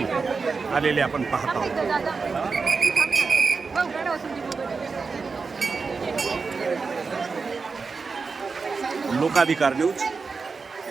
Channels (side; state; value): left; quieter; 4.7 dB